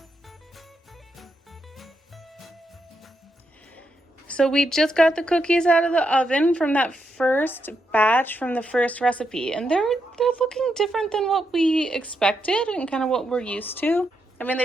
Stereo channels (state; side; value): normal; both; correlation 0.82